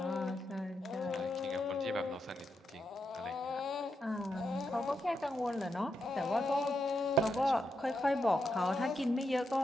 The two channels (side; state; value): both; normal; correlation 0.84